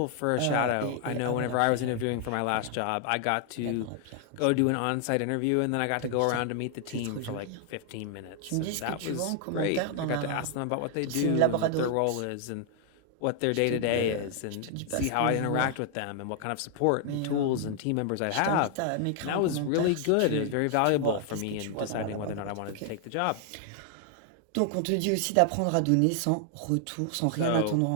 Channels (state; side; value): different; both; correlation 0.00